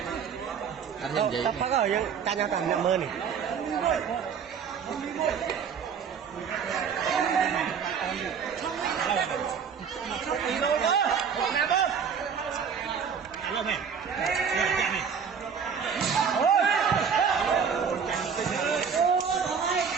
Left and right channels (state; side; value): quieter; left; 6.8 dB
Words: anh nhìn gì có rồi ta nhau còn mơ này